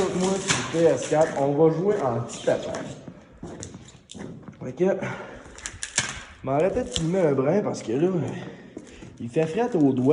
sur PS4, on va jouer en petit tapage. Fait que, m'arrêtez de filmer un brin parce que là, il fait fret aux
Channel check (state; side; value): identical; both; correlation 1.00